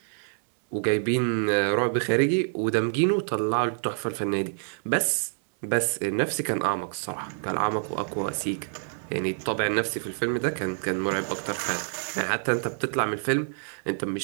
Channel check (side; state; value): left; silent; digital silence